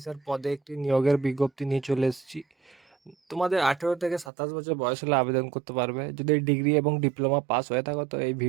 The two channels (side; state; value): left; drops out; at 4.3 s